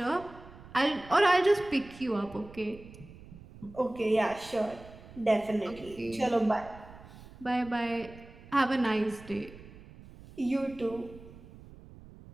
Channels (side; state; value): right; noise; rumble, 19 dB below the sound